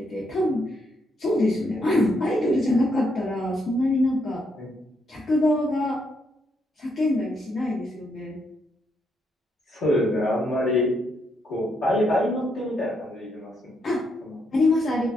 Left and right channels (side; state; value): both; normal; correlation 0.77